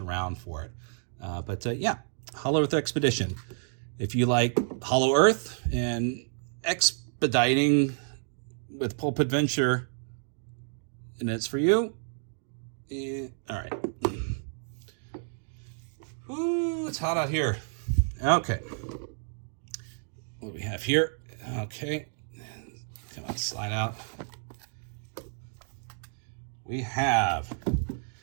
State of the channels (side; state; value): left; silent; digital silence